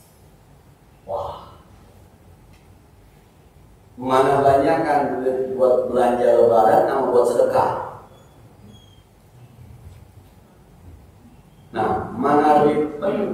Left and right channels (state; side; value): identical; both; correlation 1.00